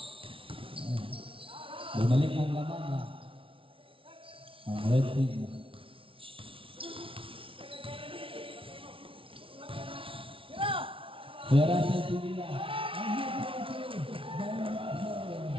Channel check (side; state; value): left; late; 0.26 ms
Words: Bumalik ang laman na ang red team. Kaya Russell Pinila.